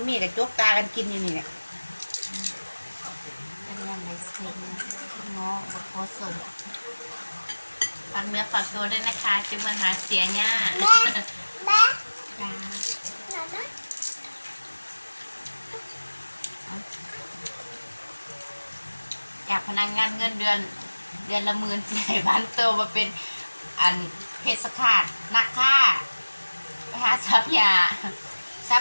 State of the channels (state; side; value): inverted; both; correlation -1.00